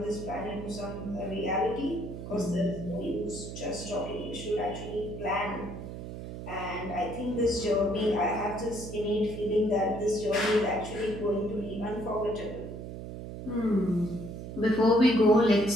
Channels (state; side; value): noise; right; hum, 9 dB below the sound